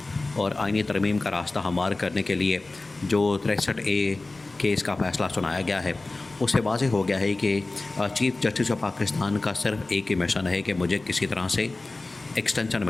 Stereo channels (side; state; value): right; quieter; 3.2 dB